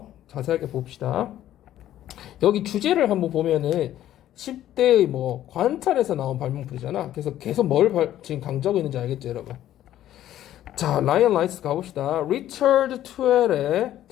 자세하게 봅시다. 여기 주제를 한번 보면은 10대의 뭐 관찰에서 나온 발명품이잖아. 그래서 계속 지금 강조하고 있는지 알겠죠, 여러분? 자, 라이언 라이트 가봅시다. Richard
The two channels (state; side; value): quieter; right; 12.5 dB